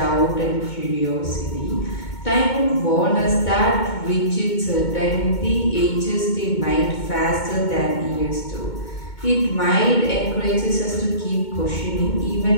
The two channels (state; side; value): late; right; 2.2 ms